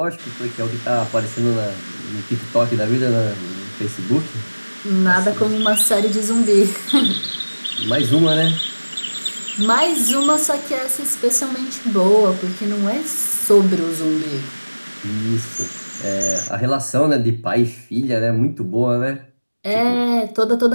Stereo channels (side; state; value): both; inverted; correlation -1.00